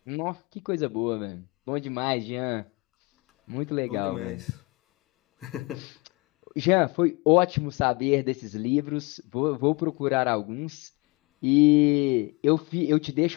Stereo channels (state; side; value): quieter; right; 26.6 dB